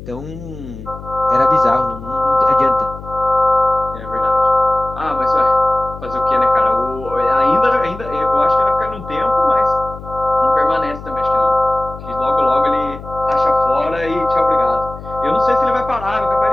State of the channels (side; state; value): left; noise; hum, 14 dB below the sound